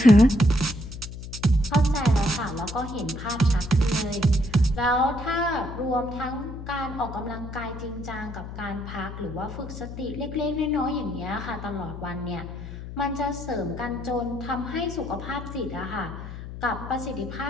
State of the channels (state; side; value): noise; left; hum, 10 dB below the sound